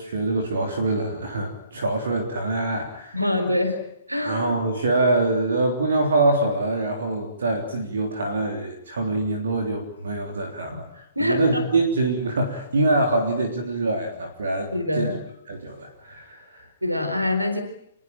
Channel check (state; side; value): inverted; both; correlation -0.66